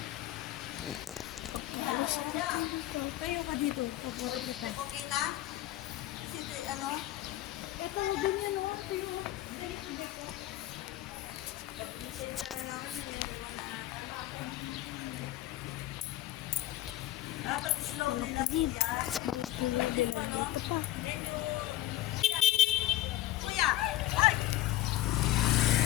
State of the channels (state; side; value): quieter; right; 14.7 dB